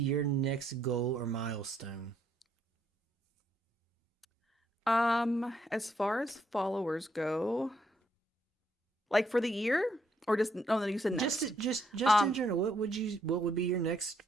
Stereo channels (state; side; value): normal; both; correlation 0.73